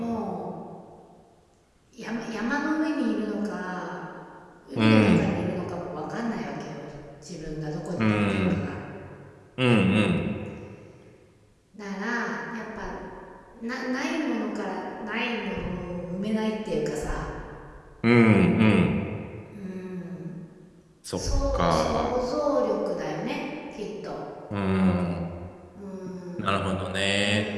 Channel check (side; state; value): both; identical; correlation 1.00